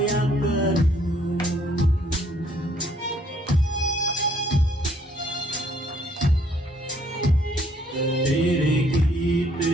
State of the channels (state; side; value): normal; both; correlation 0.65